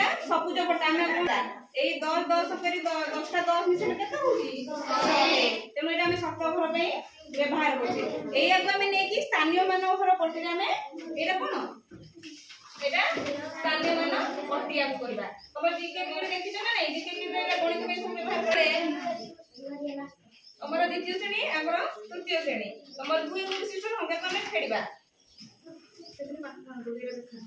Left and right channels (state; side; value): identical; both; correlation 1.00